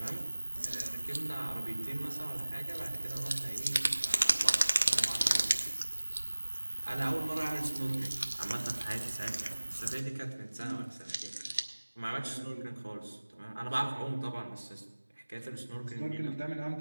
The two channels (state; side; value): inverted; both; correlation -1.00